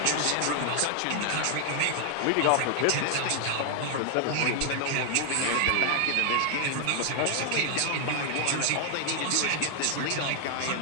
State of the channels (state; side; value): different; both; correlation 0.00